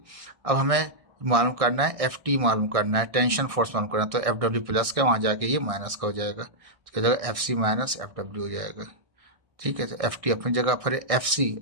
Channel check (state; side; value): late; left; 1.6 ms